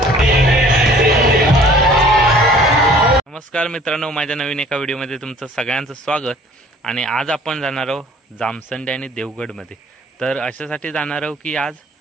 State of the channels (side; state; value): both; normal; correlation 0.52